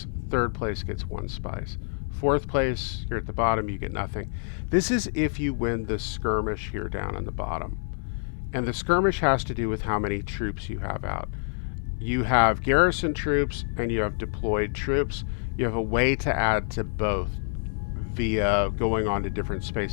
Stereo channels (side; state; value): right; silent; digital silence